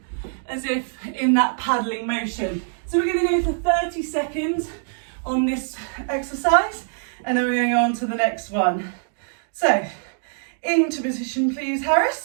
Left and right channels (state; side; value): silent; left; digital silence